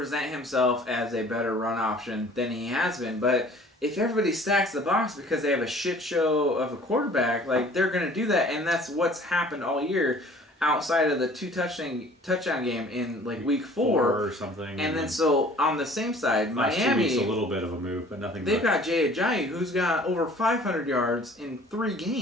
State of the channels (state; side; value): normal; both; correlation 0.51